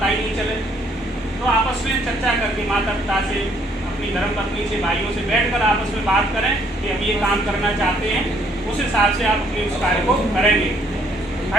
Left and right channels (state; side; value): normal; both; correlation 0.65